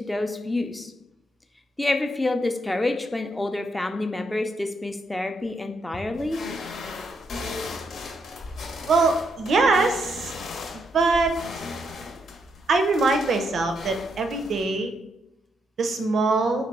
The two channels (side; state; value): both; normal; correlation 0.78